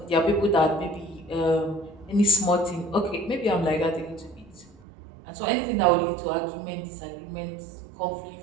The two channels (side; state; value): left; drops out; at 4.8 s